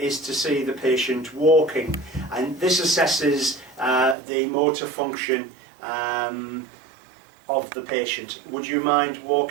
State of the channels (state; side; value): drops out; left; at 4.2 s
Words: to see the patient walking, and this assesses the motor function of the patient. Would you mind